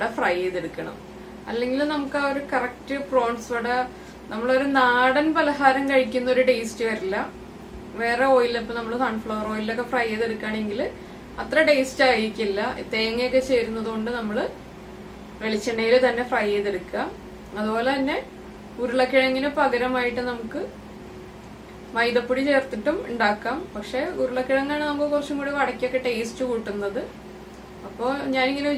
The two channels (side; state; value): both; identical; correlation 1.00